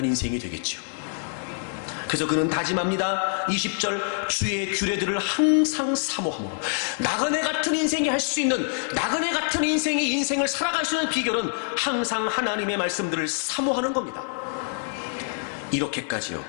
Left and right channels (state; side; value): silent; right; digital silence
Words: 인생이 되겠죠. 그래서 그는 다짐합니다. 20절, 주의 규례들을 항상 사모함으로. 나그네 같은 인생이 할 수 있는, 나그네 같은 인생이 인생을 살아갈 수 있는 비결은 항상 하나님의 말씀들을 사모하는 겁니다. 이렇게까지요,